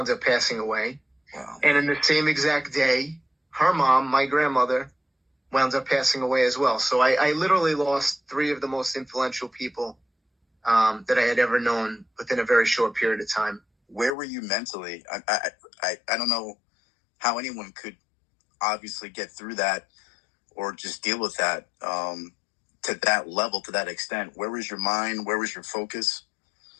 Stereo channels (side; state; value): right; drops out; at 14.2 s